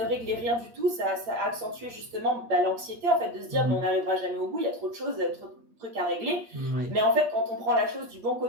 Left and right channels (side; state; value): left; late; 8.4 ms